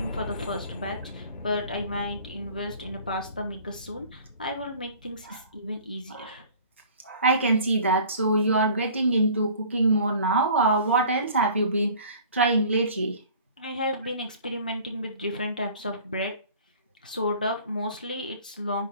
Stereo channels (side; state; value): both; inverted; correlation -0.48